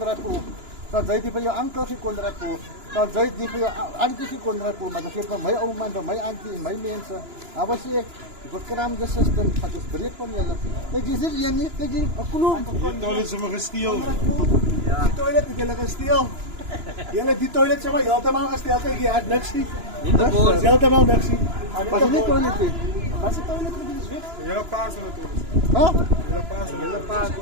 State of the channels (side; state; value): left; late; 2.9 ms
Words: Poel. Dan zei je bij jou ankel geen Konrad Poel. Dan zei je bij jou auntie geen Konrad Poel. Maar dat geeft van mijn oma, van mijn auntie, mijn mensen. Dat was ik. Ik verkram de systeem, gaat dus breed van jullie. Kijk, je zit hier niet, kijk je, een kloon. Die toilet is maar gesteel. Ja. Die toilet is helemaal gesteel. Die toilet is maar helemaal gesteel. Kijk, je had niks zien. Dat is helemaal niks zien. Was je niet toilet in? Was de toilet is weg? Hele paas natuurlijk. Huh? Hele paas.